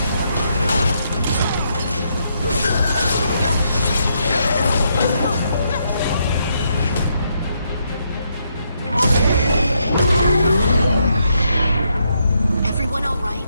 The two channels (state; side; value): inverted; both; correlation -0.77